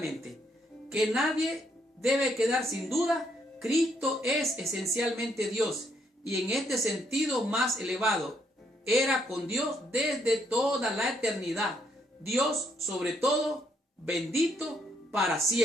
que nadie debe quedar sin duda, Cristo es esencialmente Dios y en este sentido más elevado. Era con Dios desde toda la eternidad. Dios sobre todo, bendito para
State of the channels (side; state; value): both; normal; correlation 0.73